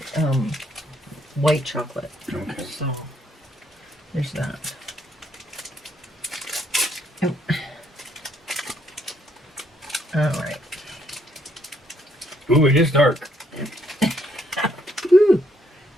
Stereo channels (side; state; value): both; normal; correlation 0.71